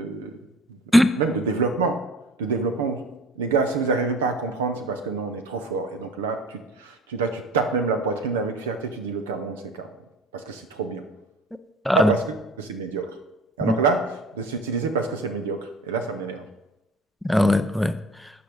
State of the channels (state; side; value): normal; both; correlation 0.44